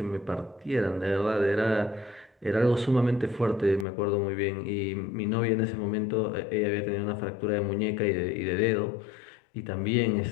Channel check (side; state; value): right; drops out; at 3.9 s